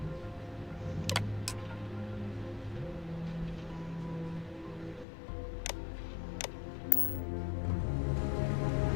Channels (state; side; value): drops out; right; at 5.1 s